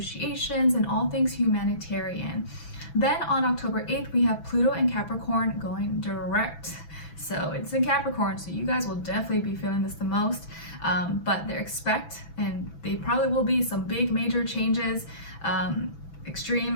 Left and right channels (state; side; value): late; right; 6.0 ms